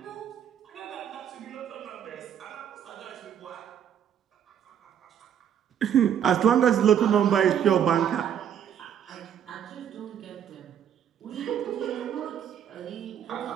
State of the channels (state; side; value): quieter; left; 9.1 dB